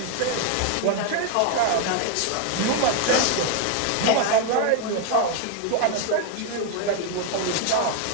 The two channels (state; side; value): different; both; correlation 0.00